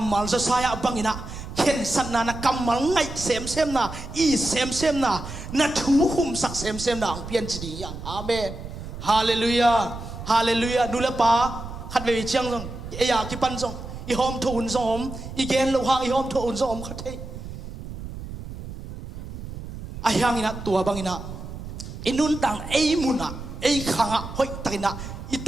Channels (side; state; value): right; noise; rumble, 10 dB below the sound